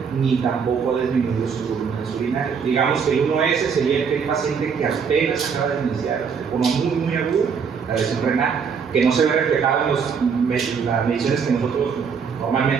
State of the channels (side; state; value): left; quieter; 6.3 dB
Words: ni tampoco ha disminuido sus volúmenes urinarios. Digamos que el 1S sería aquel paciente que apenas acaba de iniciar de forma muy aguda la lesión renal, que no se ve reflejado en las mediciones que nosotros